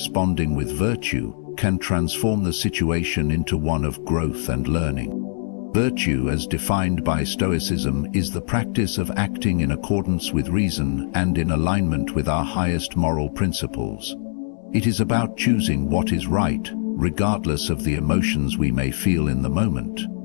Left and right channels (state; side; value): silent; right; digital silence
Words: with virtue can transform the situation into one of growth and learning. Virtue, as defined by Stoicism, is the practice of acting in accordance with reason and in alignment with our highest moral principles. It is about choosing what is right, regardless of the emotions we may feel in the moment.